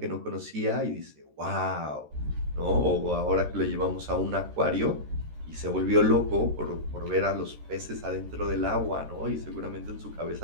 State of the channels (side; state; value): left; late; 13 ms